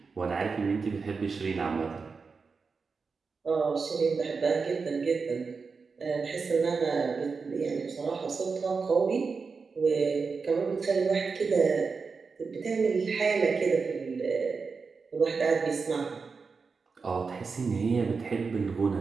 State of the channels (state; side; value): quieter; left; 4.9 dB